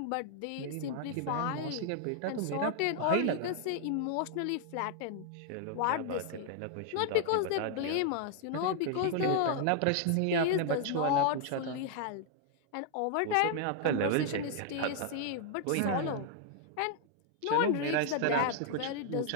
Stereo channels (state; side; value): different; both; correlation 0.00